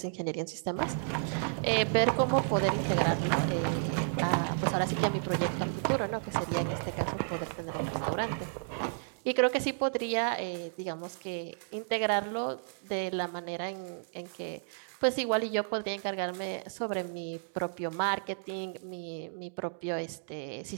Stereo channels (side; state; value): left; silent; digital silence